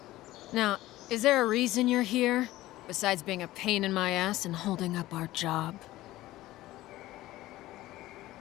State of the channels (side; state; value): right; quieter; 16.5 dB